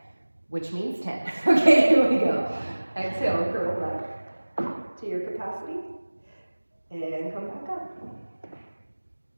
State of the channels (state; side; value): inverted; both; correlation -1.00